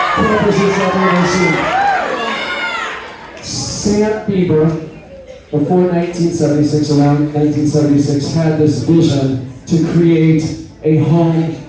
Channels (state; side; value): identical; both; correlation 1.00